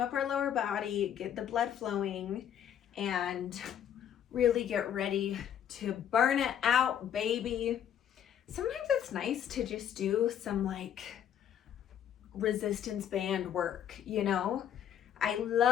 up our lower body, get the blood flowing, and really get ready to burn it out, baby. Sometimes it's nice to just do some like resistance band work, you know? I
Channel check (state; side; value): quieter; right; 9.7 dB